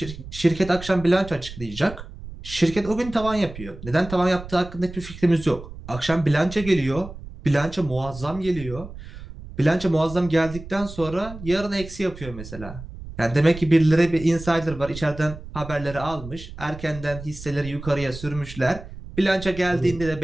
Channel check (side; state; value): right; noise; rumble, 13 dB below the sound